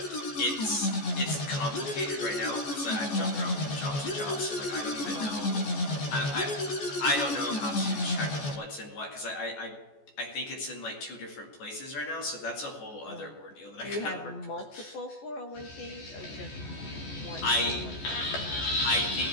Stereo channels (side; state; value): right; late; 14 ms